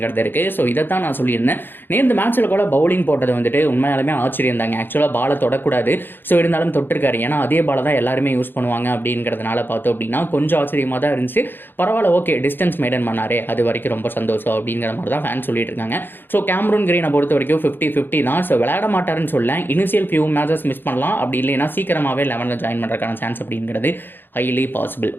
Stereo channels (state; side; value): late; right; 0.098 ms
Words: இருக்குது. ஸோ இதைத்தான் நான் சொல்லியிருந்தேன். நேற்று மேட்ச்சில் கூட பவுலிங் போட்டது வந்துட்டு உண்மையாலுமே ஆச்சரியம் தாங்க. ஆக்சுவலாக பாலை தொடக்கூடாது, ஸோ இருந்தாலும் தொட்டிருக்காரு, ஏன்னா அதே பாலை தான் எல்லாருமே யூஸ் பண்ணுவாங்க அப்படிங்கிறதுனால பார்த்தோம் அப்படின்னா கொஞ்சம் ஆச்சரியமாக தான் இருந்துச்சு. பரவாயில்ல, ஓகே, டிஸ்டன்ஸ் மெயின்டைன் பண்ணாரே, அது வரைக்கும் ரொம்ப சந்தோஷம் அப்படிங்கிற மாதிரி தான் ஃபேன் சொல்லிட்டு இருக்காங்க. ஸோ கேமரூன் கிரீனை பொறுத்த வரைக்கும் 50-50 தான். ஸோ விளையாட மாட்டாருன்னு சொல்ல, இனிஷியல் ஃபியூ மேட்சஸ் மிஸ் பண்ணலாம், அப்படி இல்லைன்னா சீக்கிரமாகவே 11ல் ஜாயின் பண்ணுறதுக்கான சான்ஸ் அப்படிங்கிறது ஹைலி பாசிபிள்.